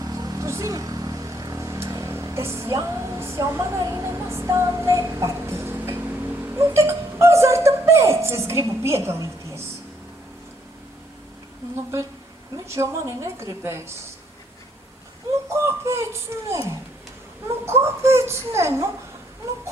tu zini, tas Jānis jau man arī nemaz tā nepatīk. Nu, tik azarta pēc es gribu piedalīties. Nu, bet viņš jau mani negribēs. Nu, kāpēc ne? Nu, kāpēc ne? Nu,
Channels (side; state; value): both; normal; correlation 0.69